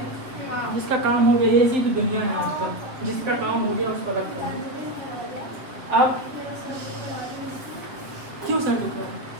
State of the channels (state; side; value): late; left; 7.5 ms